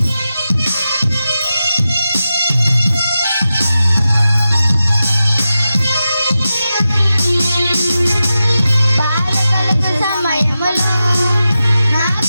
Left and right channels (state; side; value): inverted; both; correlation -0.92